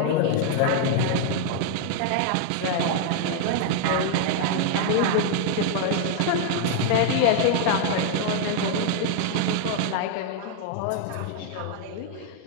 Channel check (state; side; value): different; both; correlation 0.00